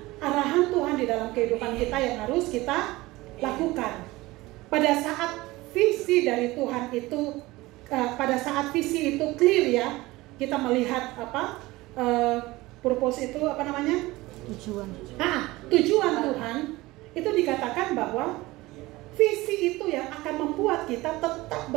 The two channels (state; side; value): quieter; left; 19.9 dB